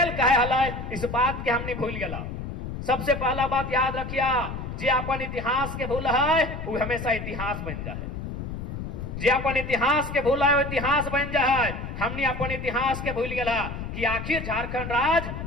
काहे हल, इस बात के हमने भूल गया। सबसे पहला बात याद रखिए, जे अपन इतिहास के भूल है वो हमेशा इतिहास बन जाए। जे अपन इतिहास के भूल है वो इतिहास बन जाए। हमने अपन इतिहास के भूल गया कि आखिर झारखंड राज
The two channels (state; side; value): noise; left; rumble, 7 dB below the sound